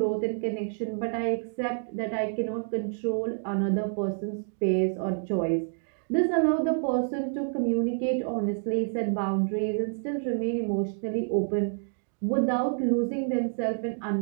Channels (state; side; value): silent; left; digital silence